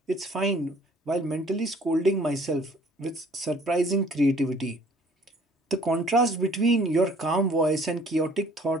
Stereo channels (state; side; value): normal; both; correlation 0.56